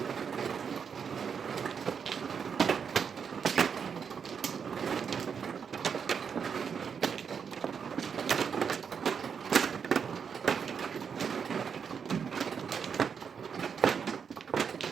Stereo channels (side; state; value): left; quieter; 6.7 dB